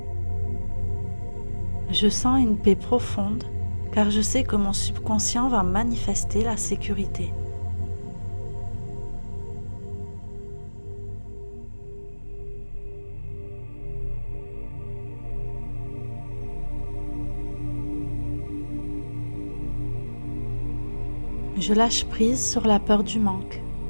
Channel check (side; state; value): both; inverted; correlation -1.00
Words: Je sens une paix profonde car je sais que mon subconscient va manifester la sécurité. Je lâche prise sur la peur du manque